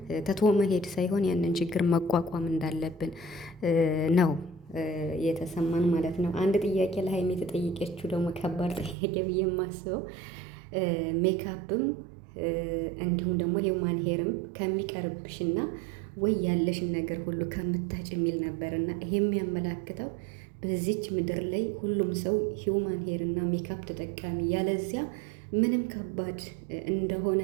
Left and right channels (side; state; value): left; drops out; at 9.0 s